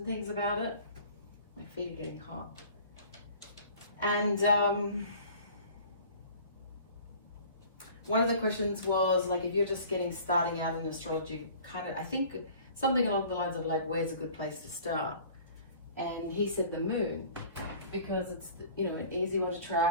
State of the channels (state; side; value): inverted; both; correlation -0.47